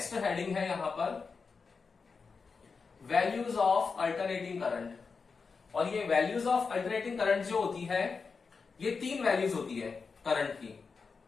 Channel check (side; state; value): right; quieter; 5.0 dB